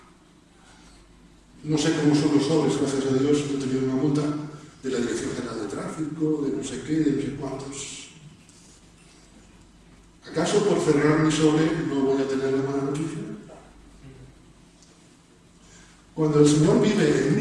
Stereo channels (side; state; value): both; identical; correlation 1.00